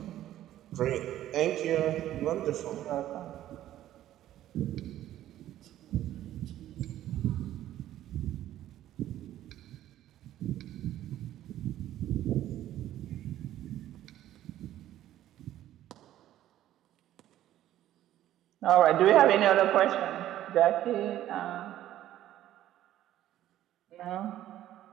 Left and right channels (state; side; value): quieter; left; 12.9 dB